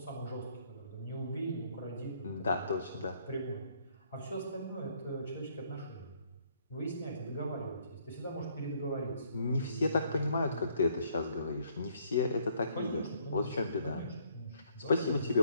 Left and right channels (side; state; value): both; inverted; correlation -0.66